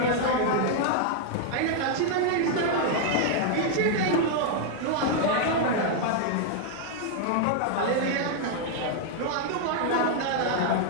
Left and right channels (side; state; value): both; different; correlation 0.00